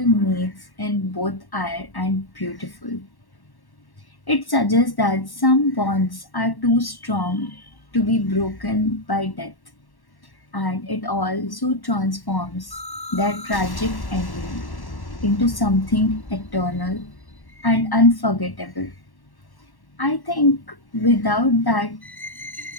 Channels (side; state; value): right; late; 1.1 ms